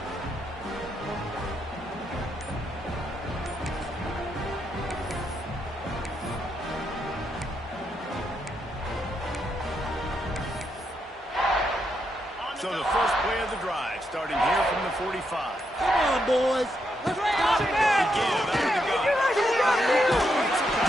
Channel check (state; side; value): normal; both; correlation 0.80